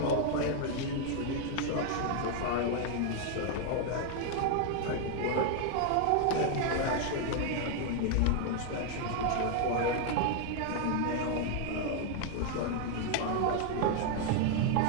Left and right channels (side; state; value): both; different; correlation 0.00